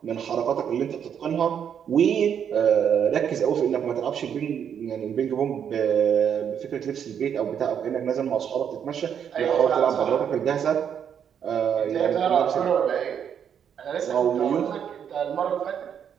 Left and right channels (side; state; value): left; quieter; 8.3 dB